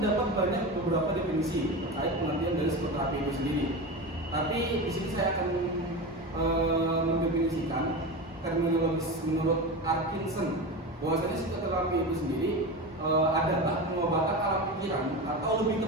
banyak beberapa definisi terkait pengertian dari psikoterapi itu sendiri. Tapi di sini saya akan mendefinisikan terminologis menurut Atkinson bahwasanya psikoterapi itu sendiri adalah pengobatan alam pikiran atau lebih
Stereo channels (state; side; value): normal; both; correlation 0.24